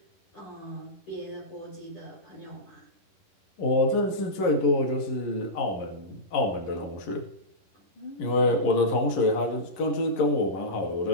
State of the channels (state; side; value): late; right; 10 ms